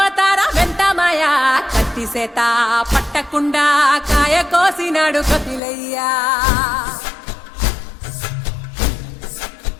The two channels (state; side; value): drops out; right; at 5.6 s